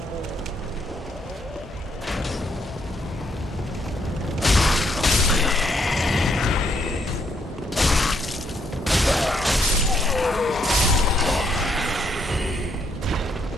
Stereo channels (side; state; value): both; normal; correlation 0.73